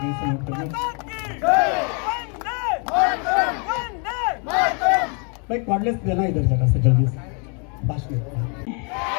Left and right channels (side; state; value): right; quieter; 37.2 dB